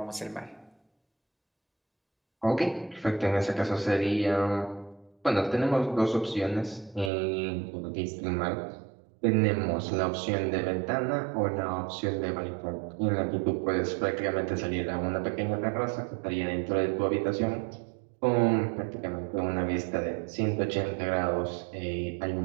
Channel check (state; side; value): drops out; left; at 7.1 s